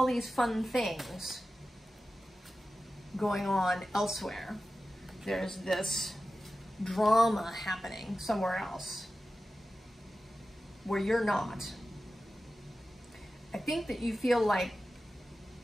these fun things going on elsewhere, there's this drama happening somewhere else where you're not. I think that you feel like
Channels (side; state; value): both; normal; correlation 0.94